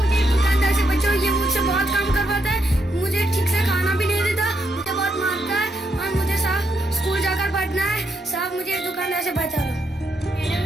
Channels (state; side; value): normal; both; correlation 0.78